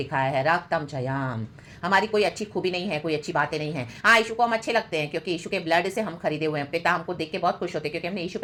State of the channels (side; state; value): both; identical; correlation 1.00